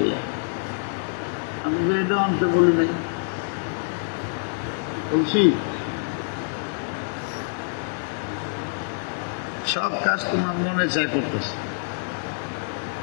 যায়। আমি তো এটা অন্তে বলি নাই, বলছি সব কাজ তোমার মনে চায় করতেছে।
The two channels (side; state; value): right; silent; digital silence